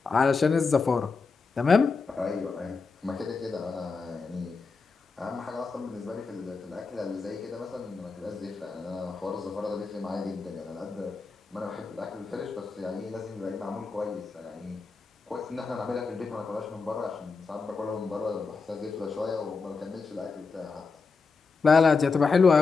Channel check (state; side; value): quieter; right; 4.6 dB